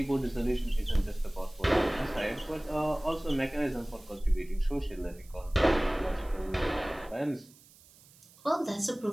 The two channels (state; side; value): noise; right; hiss, 25 dB below the sound